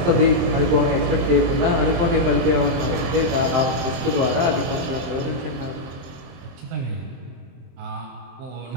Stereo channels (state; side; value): late; left; 23 ms